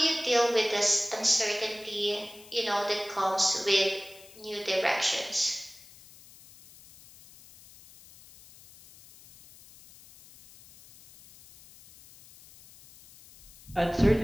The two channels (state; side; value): noise; left; hiss, 22 dB below the sound